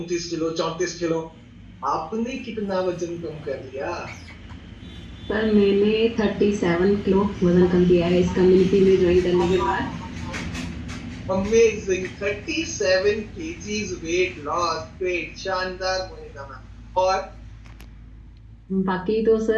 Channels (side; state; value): both; identical; correlation 1.00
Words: किलो, 34 किलो। आपने कितना वजन कम कर लिया? सर मैंने 37 किलो वजन कम किया है इस कम्युनिटी में ज्वाइन करने के बाद। Amazing, 37 kgs weight loss, great, शानदार मोनिका मैम। और बाकी तो